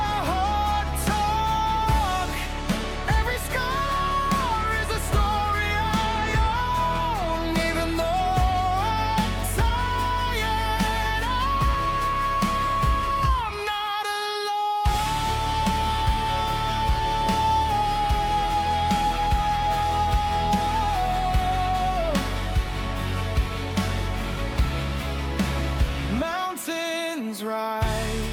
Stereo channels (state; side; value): identical; both; correlation 1.00